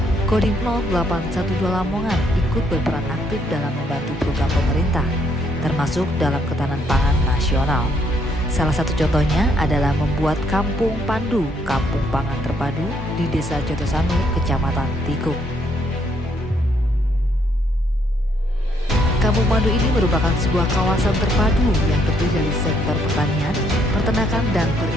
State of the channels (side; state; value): both; normal; correlation 0.71